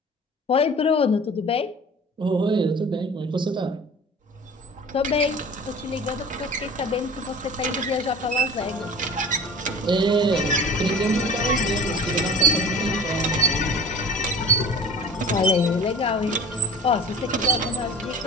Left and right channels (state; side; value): normal; both; correlation 0.41